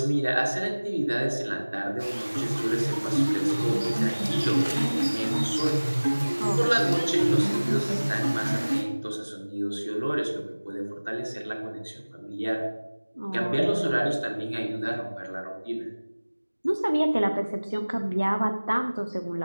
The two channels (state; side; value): inverted; both; correlation -1.00